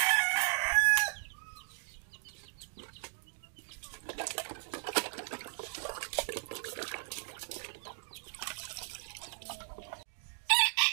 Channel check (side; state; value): left; silent; 54 dB below the other